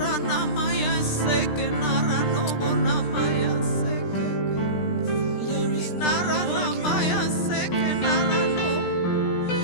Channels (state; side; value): late; right; 17 ms